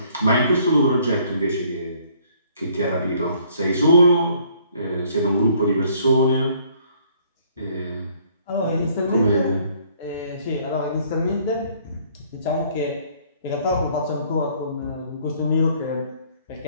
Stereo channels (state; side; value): inverted; both; correlation -0.62